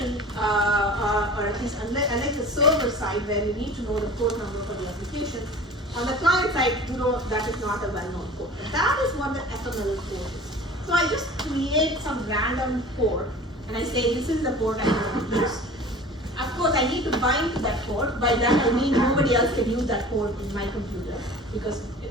or at least unlike the server side where you need to know the port number for the application, on the client side, you know that is not a well-known port. But that is what the ephemeral port is. So I just create some random port, and I say this is the port I want to use. Of course, I need to bind to that port. By that I mean nobody else can use that port in my computer because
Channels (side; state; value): both; normal; correlation 0.41